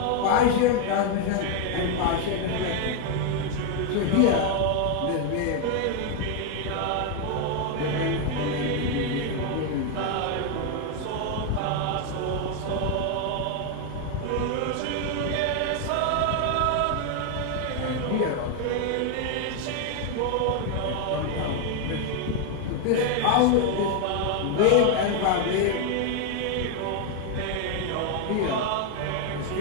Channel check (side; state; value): both; different; correlation 0.01